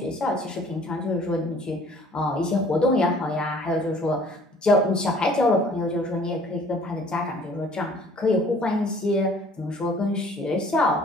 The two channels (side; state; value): both; normal; correlation 0.54